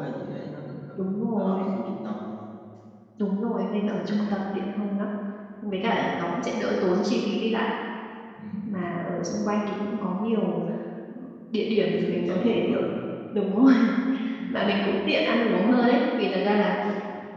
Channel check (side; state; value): both; identical; correlation 1.00